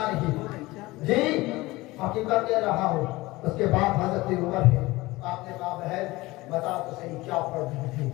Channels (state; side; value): quieter; right; 20.2 dB